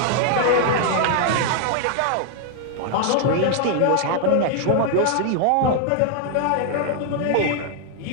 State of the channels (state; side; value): different; both; correlation 0.00